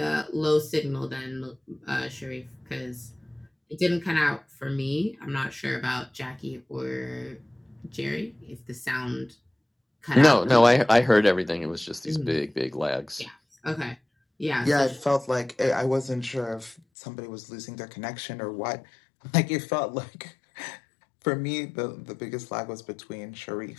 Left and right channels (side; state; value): right; drops out; at 16.8 s